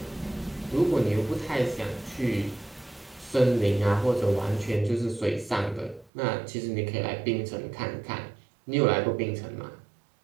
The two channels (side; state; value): left; drops out; at 6.1 s